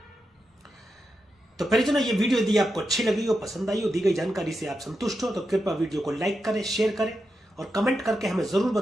तो परिजनों, ये वीडियो यदि आपको अच्छी लगी हो, पसंद आई हो, दी गई जानकारी से आप संतुष्ट हो, तो कृपया वीडियो को लाइक करें, शेयर करें और कमेंट करके हमें जरूर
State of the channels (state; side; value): normal; both; correlation 0.87